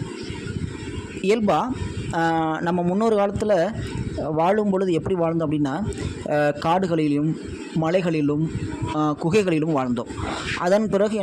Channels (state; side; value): identical; both; correlation 1.00